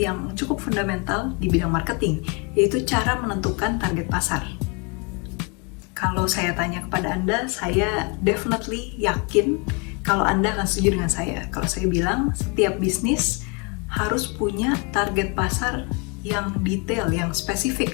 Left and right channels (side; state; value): right; quieter; 31.8 dB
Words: cukup fundamental di bidang marketing, yaitu cara menentukan target pasar. Kalau saya tanya kepada Anda, saya definitely yakin kalau Anda akan setuju dengan saya. Kalau saya bilang, setiap bisnis harus punya target pasar yang detail, yang spesifik